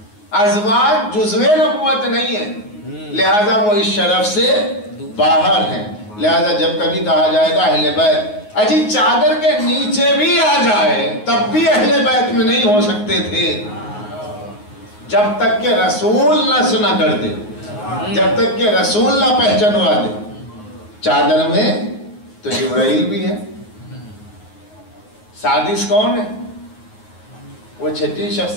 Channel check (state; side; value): late; right; 9.5 ms